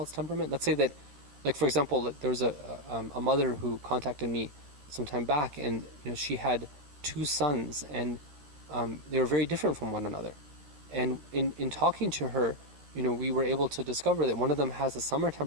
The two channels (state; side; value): late; left; 13 ms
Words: temperament. Let's say that, for example, there was a mother who contacted me some time back, and she had 2 sons, and they were very different from one another. And in talking to her, we were able to discover that one of them has a summer